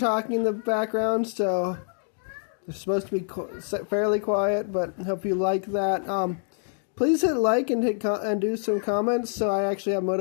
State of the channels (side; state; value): right; silent; digital silence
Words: in the background, so they're supposed to be fairly quiet, but I hope you like that. Please hit like and do some comments so I actually have